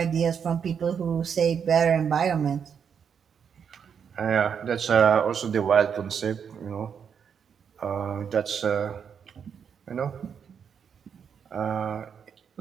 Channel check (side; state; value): left; quieter; 7.2 dB